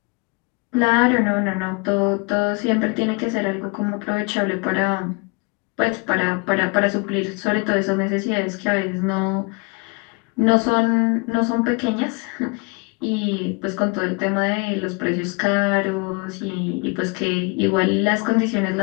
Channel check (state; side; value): quieter; right; 30.6 dB